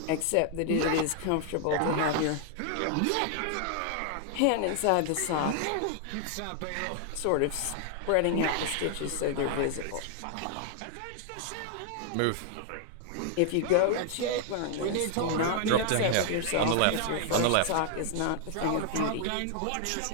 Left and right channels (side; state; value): both; different; correlation 0.00